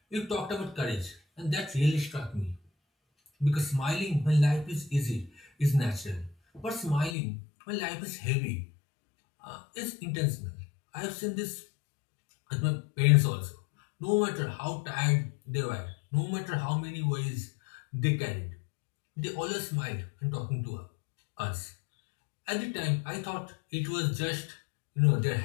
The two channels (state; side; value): drops out; right; at 7.2 s